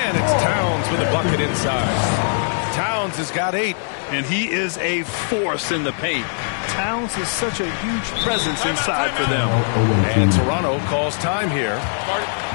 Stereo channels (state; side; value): silent; right; digital silence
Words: it's Towns with a bucket inside. Towns has got 8. And he is a force in the paint. Towns is such a huge presence inside for them. And Toronto calls time here.